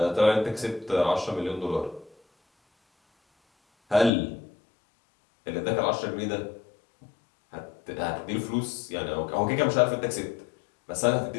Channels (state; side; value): drops out; right; at 4.1 s